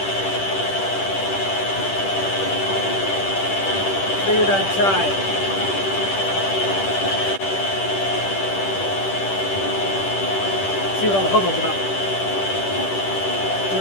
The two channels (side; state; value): right; late; 10 ms